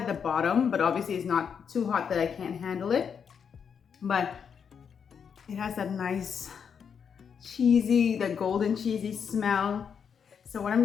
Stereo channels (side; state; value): right; quieter; 7.0 dB